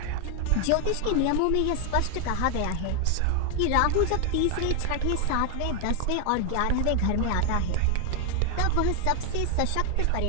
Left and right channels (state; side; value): different; both; correlation 0.01